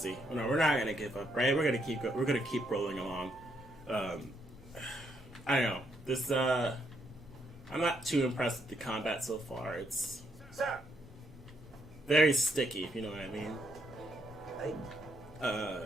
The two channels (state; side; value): normal; both; correlation 0.75